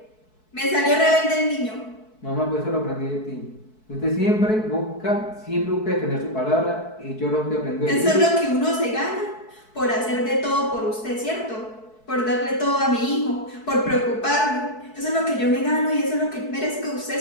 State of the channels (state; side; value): late; right; 4.6 ms